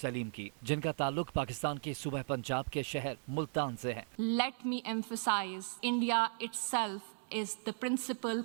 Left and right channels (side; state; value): left; silent; digital silence